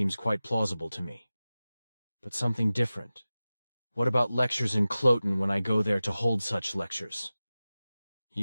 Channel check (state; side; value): inverted; both; correlation -0.96